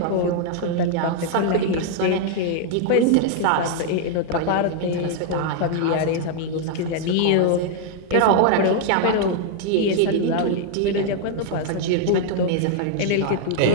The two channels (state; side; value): different; both; correlation 0.00